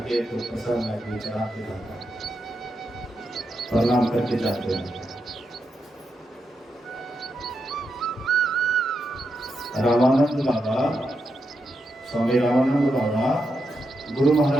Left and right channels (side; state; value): both; normal; correlation 0.84